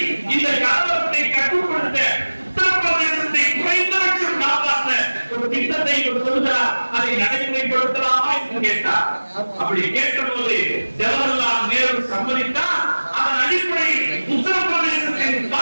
இந்த கலவரத்தை கட்டுப்படுத்த உத்தரப்பிரதேசத்தை குறைந்தபட்சம் காப்பாற்ற ஒரு திட்டத்தை சொல்கிறார். அதை நடைமுறைப்படுத்தலாமா என்று கேட்டார். அப்படி கேட்டபோது ஜவஹர்லால் நேரு சம்மதித்தார். அதன் அடிப்படையில் உத்தரப்பிரதேசத்தின்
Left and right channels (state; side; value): inverted; both; correlation -1.00